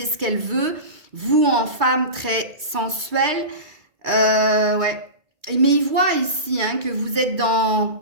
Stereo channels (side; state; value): left; late; 2.4 ms